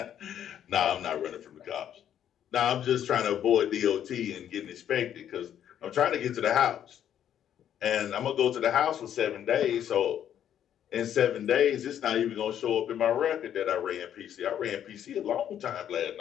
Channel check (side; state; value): right; quieter; 10.0 dB